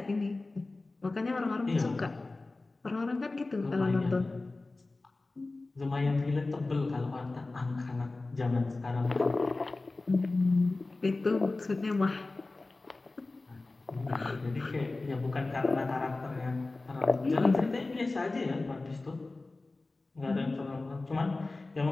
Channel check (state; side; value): quieter; right; 3.3 dB